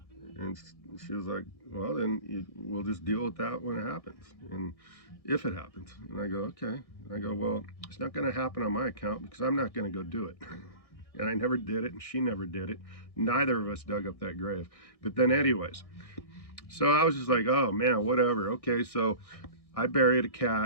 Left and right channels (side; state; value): right; late; 1.6 ms